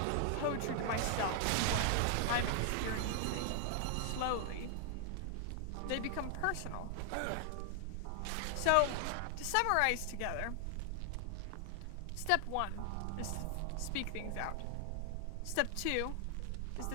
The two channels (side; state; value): both; different; correlation 0.00